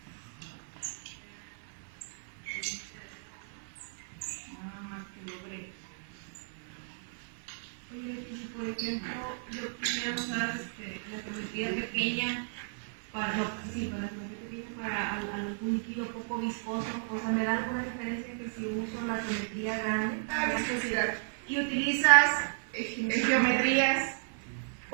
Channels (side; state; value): left; silent; 55 dB below the other